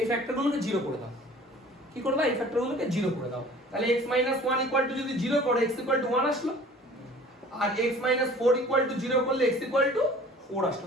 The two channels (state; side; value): normal; both; correlation 0.48